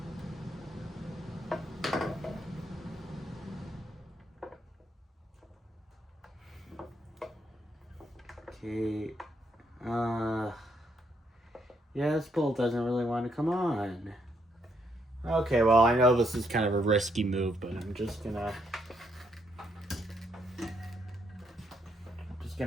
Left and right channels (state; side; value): normal; both; correlation 0.75